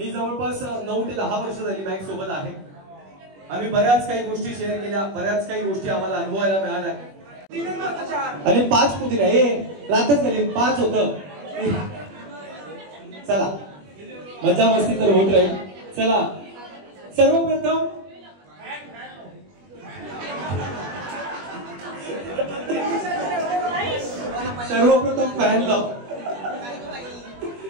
जवळपास 9 ते 10 वर्ष झाली मॅक्स सोबत आहे. आम्ही बऱ्याच काही गोष्टी शेअर केल्या. बऱ्याच काही गोष्टी आम्हाला अनुभवायला मिळाल्या. आणि 5 कुठे नाही रातच गेली 5 होतं. चला मजा मस्ती तर होत राहील. चला सर्वप्रथम सर्वप्रथम फॅन लाव.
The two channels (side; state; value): left; late; 21 ms